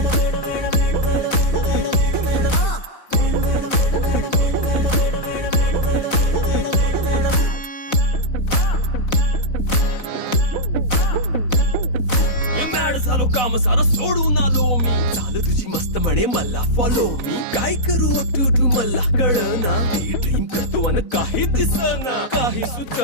झालो काम सारं सोडून आलो मी चाल तुझी मस्त म्हणे मला फॉलो मी काय करू टू मला कळना ती ड्रीम करतो अन काही दिसना काही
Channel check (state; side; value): late; right; 4.0 ms